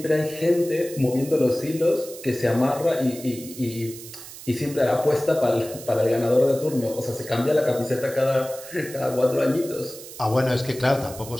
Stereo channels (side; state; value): right; noise; hiss, 14 dB below the sound